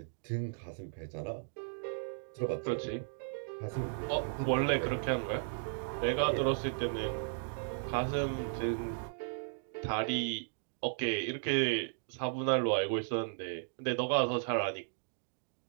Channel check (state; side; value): silent; left; digital silence